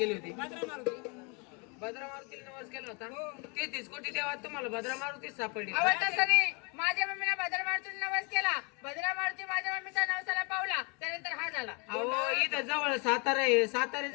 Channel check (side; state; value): right; quieter; 32.3 dB